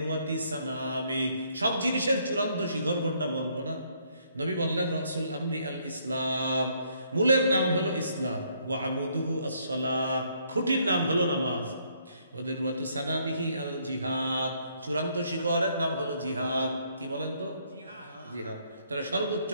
সানামি, সব জিনিসের চূড়ান্ত শিখর কোনটা বলবো না? নবী বললেন, রাসূল আমরি আল ইসলাম, মূলের নাম হলো ইসলাম। ওয়া আমুদুহু আস-সালাহ, খুঁটির নাম হলো নামাজ। ওয়া দিরওয়াতু সানামিহি আল জিহাদ, চূড়ান্ত শিখরের নাম হলো জিহাদ। কি বলেন তো? জিহাদ। তাহলে সর্বোচ্চ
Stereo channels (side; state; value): both; inverted; correlation -0.69